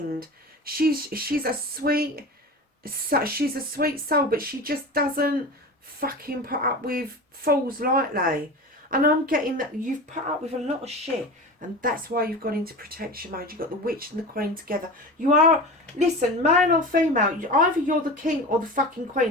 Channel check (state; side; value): normal; both; correlation 0.31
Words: She's a sweet soul, but she just doesn't fucking put up with fools lightly. And I'm getting that you've put up with a lot of shit, and that's why you've gone into protection mode. You've got the witch and the queen together. You are, listen, male or female, either you're the king or the fucking